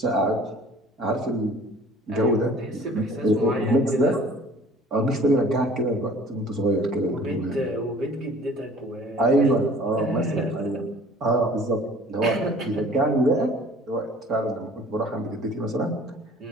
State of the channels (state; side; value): normal; both; correlation 0.50